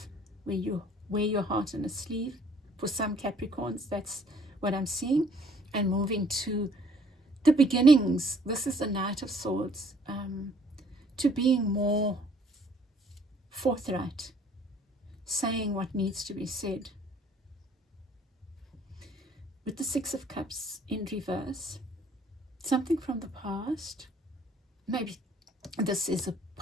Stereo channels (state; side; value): normal; both; correlation 0.59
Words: where you wear your heart on a sleeve. For some Capricorns, that's what I'm seeing, and moving to the beginnings. This is the Knight of Swords, to being more forthright, saying what needs to be said. With the Six of Cups in reverse, something from the past, maybe this is a